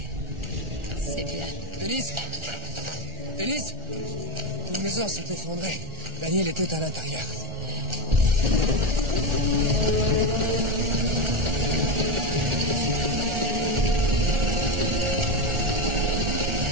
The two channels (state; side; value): late; left; 1.4 ms